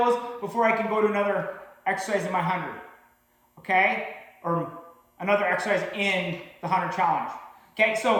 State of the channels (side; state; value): both; identical; correlation 1.00